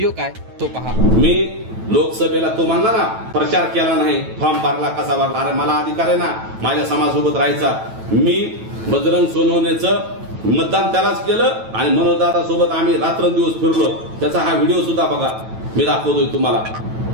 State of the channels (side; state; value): left; late; 9.1 ms